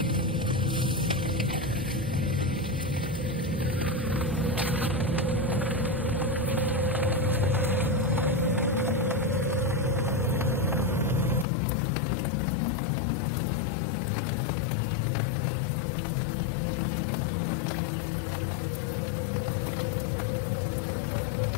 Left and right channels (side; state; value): right; drops out; at 11.5 s